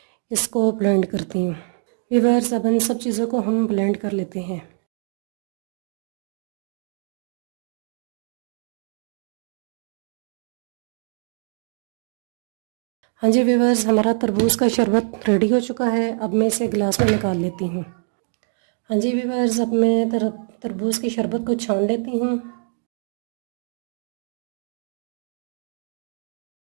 इसको ब्लेंड करती हूँ। व्यूअर्स, अब इन सब चीज़ों को हम ब्लेंड कर लेते हैं। हाँ जी व्यूअर्स, हमारा तरबूज का शरबत रेडी हो चुका है। अब मैं इसे गिलास में निकाल लेती हूँ। हाँ जी व्यूअर्स, अब मैं तरबूज की शरबत को छान लेती हूँ।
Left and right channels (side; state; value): left; silent; 55 dB below the other